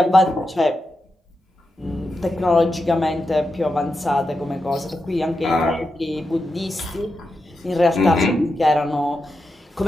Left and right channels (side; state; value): both; normal; correlation 0.88